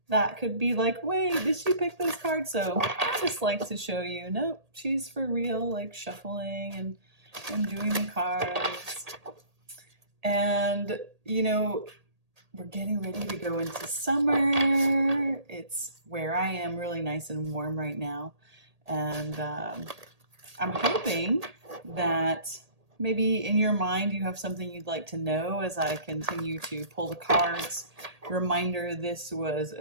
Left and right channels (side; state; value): left; late; 1.8 ms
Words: that could be like, wait, did she pick those cards? So I just like to show you, nope, she's for real, like shuffling and doing the cards. And, you know, we're getting ready to go into summer. It's where I am really nice and warm right now. And I'm hoping that maybe in your mind you have something you'd like to know as I continue to pull the cards. Reminder, this was